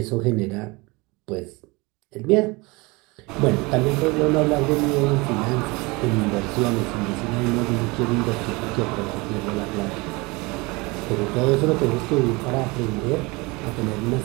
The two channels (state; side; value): quieter; left; 25.3 dB